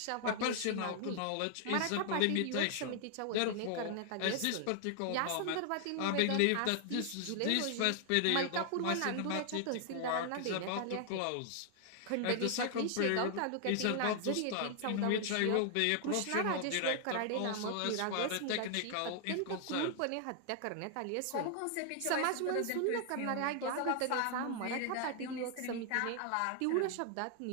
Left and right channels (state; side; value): different; both; correlation 0.00